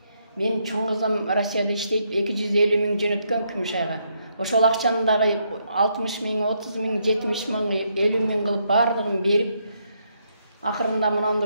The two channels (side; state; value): both; inverted; correlation -0.76